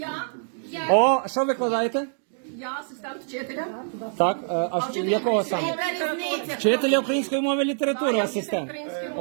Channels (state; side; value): silent; left; digital silence